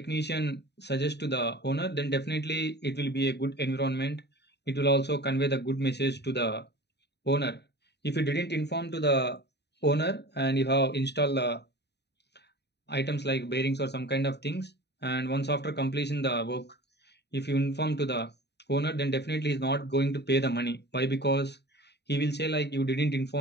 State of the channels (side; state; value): right; late; 0.49 ms